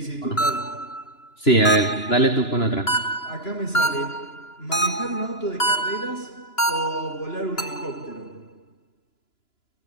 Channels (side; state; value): right; late; 2.9 ms